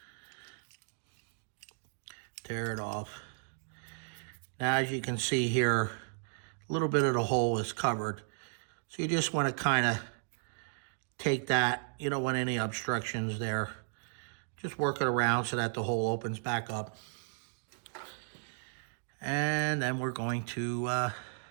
Tear it off. Now, as you can see here, a little bit of the hole is covered. So you just want to kind of take that, you don't want any obstructions there. Just work it around so that the hole opens back up. And then we're going to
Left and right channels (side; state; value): left; silent; digital silence